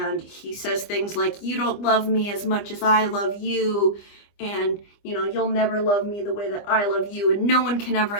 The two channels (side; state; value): right; late; 25 ms